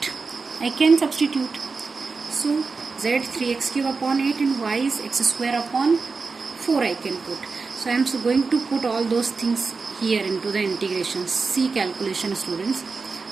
I can substitute. So z 3x cube upon 8 and y is x square upon 4 I can put. So I am going to put all those things here into the integration. C calculation, students.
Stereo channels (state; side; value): quieter; left; 4.5 dB